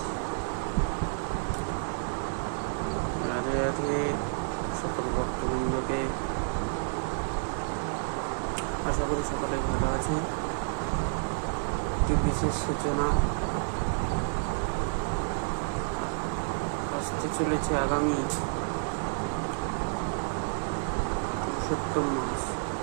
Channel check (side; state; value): left; silent; digital silence